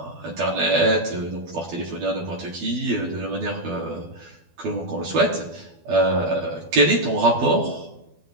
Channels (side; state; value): left; late; 12 ms